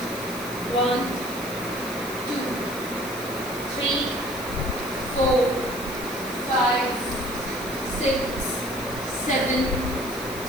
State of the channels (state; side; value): noise; left; hiss, 12 dB below the sound